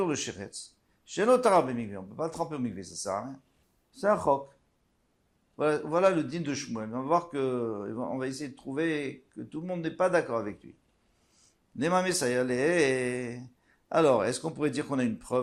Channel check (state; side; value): identical; both; correlation 1.00